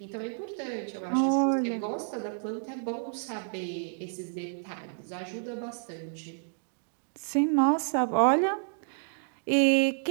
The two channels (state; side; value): silent; left; digital silence